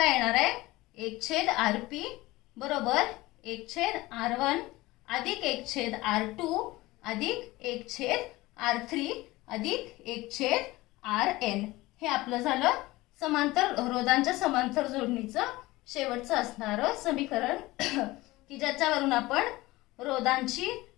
येणार आहे? 1/Rp बरोबर 1/R1 अधिक 1/R2 अधिक 1/R3 अधिक 1/Rn. हे आपलं झालं समांतर रोधांच्या समांतर जोडणीचं शेवटचं असणारं समीकरण की ज्याच्यावरून आपण रोधांची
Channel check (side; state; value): right; quieter; 19.6 dB